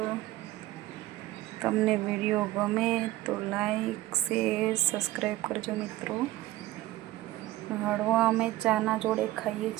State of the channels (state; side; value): quieter; left; 16.1 dB